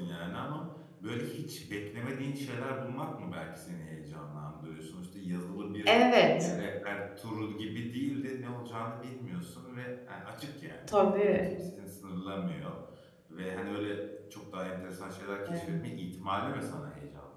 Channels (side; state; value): both; identical; correlation 1.00